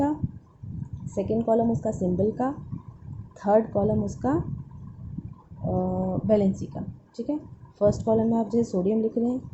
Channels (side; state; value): both; identical; correlation 1.00